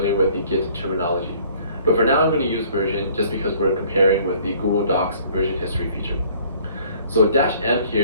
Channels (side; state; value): both; inverted; correlation -0.56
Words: with the Git terminology. But for now, I'm going to use version just because we're comparing with the Google Docs version history feature. So -m